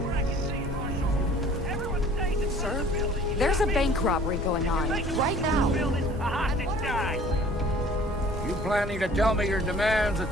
Sir, there's a bank robbery going on right now. You planning to tell me your demands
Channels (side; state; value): both; normal; correlation 0.51